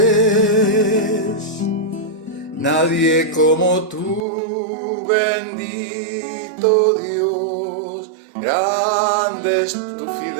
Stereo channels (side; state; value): left; drops out; at 4.2 s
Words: es. Nadie como tú, bendito Dios. Grande es tu